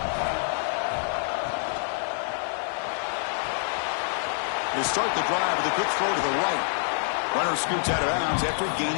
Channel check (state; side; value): silent; right; digital silence